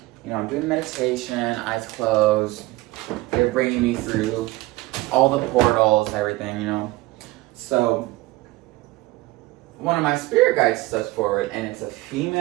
you know, I'm doing meditation, eyes closed. They're bringing me through all the portals, everything, you know. So one of my spirit guides steps forward, and it's a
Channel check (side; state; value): left; quieter; 19.7 dB